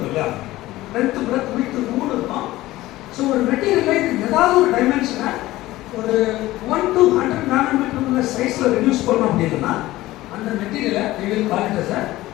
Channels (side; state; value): right; quieter; 17.1 dB